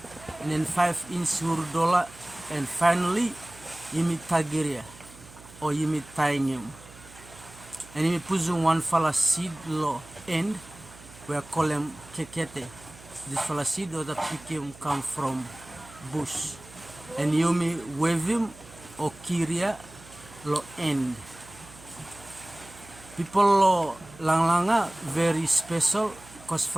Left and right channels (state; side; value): noise; right; hum, 20 dB below the sound